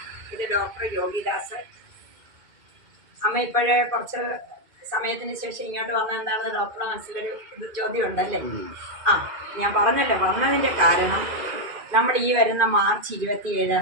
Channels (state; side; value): late; left; 2.4 ms